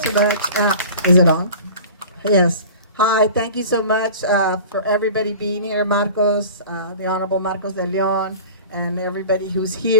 so much. Is it on? Yes. Hi, thank you so much for everybody being here. Marcos, the Honorable Marcos de Leon, and everybody who's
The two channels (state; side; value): inverted; both; correlation -0.39